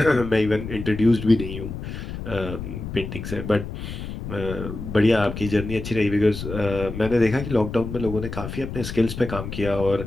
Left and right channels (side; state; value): left; noise; rumble, 8 dB below the sound